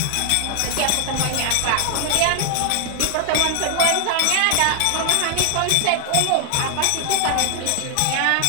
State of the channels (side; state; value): both; different; correlation 0.00